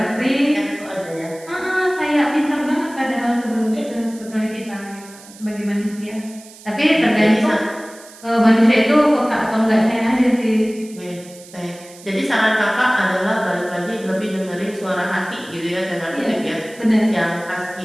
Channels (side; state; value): right; noise; hiss, 20 dB below the sound